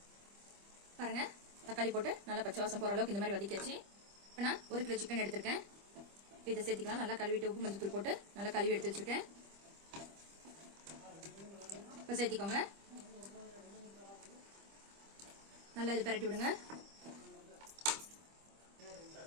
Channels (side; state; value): left; late; 25 ms